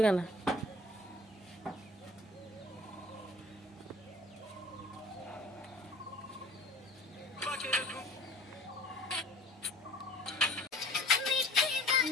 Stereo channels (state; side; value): normal; both; correlation 0.47